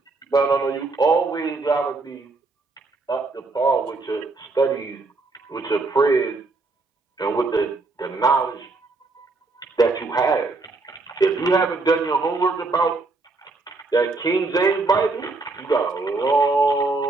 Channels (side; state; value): left; quieter; 3.5 dB